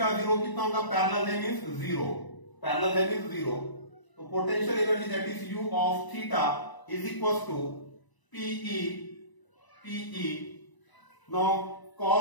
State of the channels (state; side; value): late; right; 1.0 ms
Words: 0 कितना होगा, पैरेलल है मींस 0, पैरेलल है मींस 0, तो potential energy that is u of theta is equal to PE now